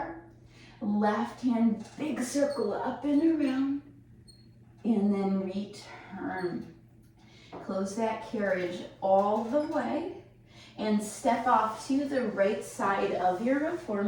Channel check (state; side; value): identical; both; correlation 1.00